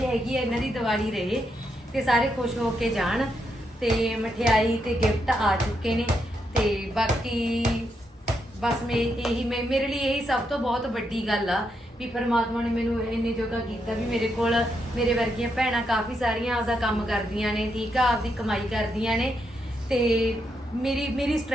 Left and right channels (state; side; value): normal; both; correlation 0.81